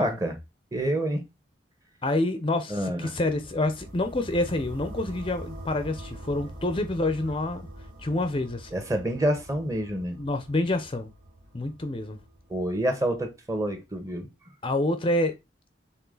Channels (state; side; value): normal; both; correlation 0.62